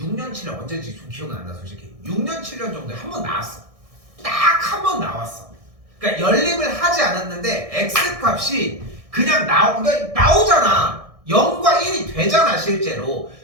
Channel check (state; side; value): late; left; 1.6 ms